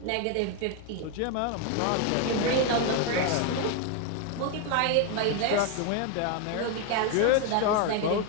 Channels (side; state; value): both; different; correlation 0.01